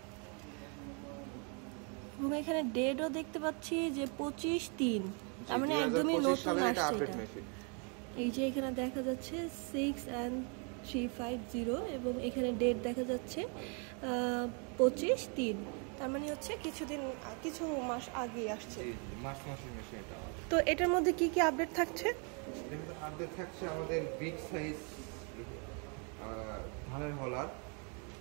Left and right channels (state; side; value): quieter; left; 36.9 dB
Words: এবং এখানে ডেটও দেখতে পাচ্ছি যে 25/3, তার মানে একদমই নতুন আসছে এটা। এই যে এখানে দেখা যাচ্ছে 6N350 এবং এখানে ডেট দেখা যাচ্ছে 25/3, তার মানে হচ্ছে কিছু মাস আগে আসছে। মাসের মেশিন এটা। তো এটার মধ্যে কি কি আপডেট থাকছে? আপডেট থাকছে আমাদের বিগ সাইজ ধানের হলার,